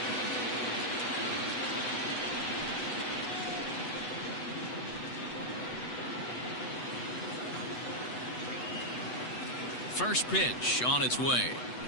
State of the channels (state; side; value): late; right; 8.1 ms